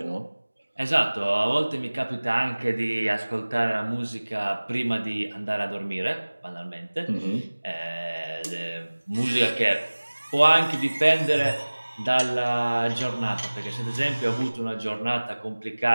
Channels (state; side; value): inverted; both; correlation -1.00